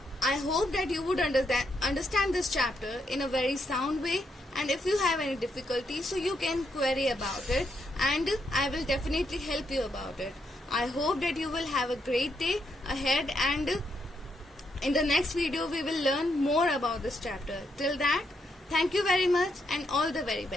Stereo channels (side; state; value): both; normal; correlation 0.78